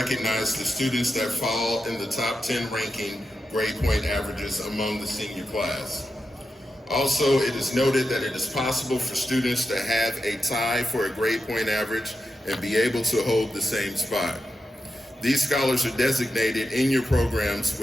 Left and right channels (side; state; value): both; normal; correlation 0.88